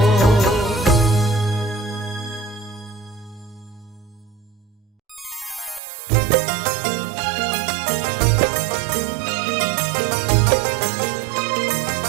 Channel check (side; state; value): left; drops out; at 5.8 s